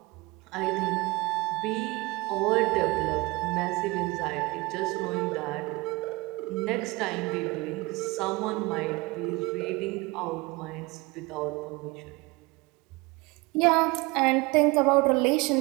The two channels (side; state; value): left; quieter; 23.8 dB